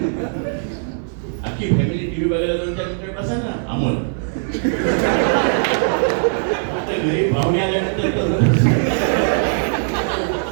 अख्खी फॅमिली टीव्ही बघायला 2-4 मिनिटं बसा ना. अमोल घरी पाहुणे आल्यानंतर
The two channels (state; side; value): silent; left; digital silence